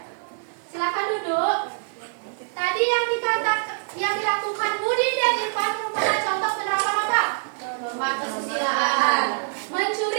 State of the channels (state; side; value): silent; left; 58 dB below the other